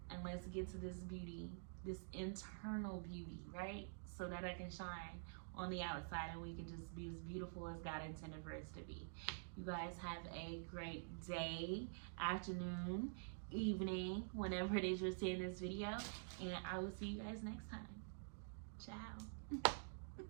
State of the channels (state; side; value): silent; left; digital silence